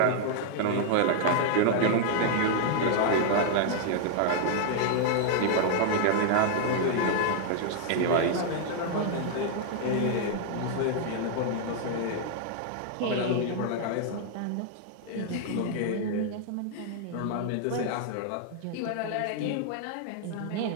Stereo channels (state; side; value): different; both; correlation 0.00